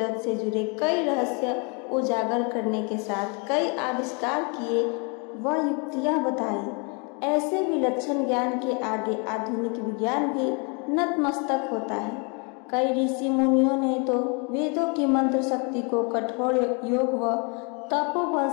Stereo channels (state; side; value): quieter; right; 34.1 dB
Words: से जुड़े कई रहस्य उजागर करने के साथ कई आविष्कार किए व युक्तियां बताई। ऐसे विलक्षण ज्ञान के आगे आधुनिक विज्ञान भी नतमस्तक होता है। कई ऋषि मुनियों ने तो वेदों की मंत्र शक्ति को कठोर योग व तपोबल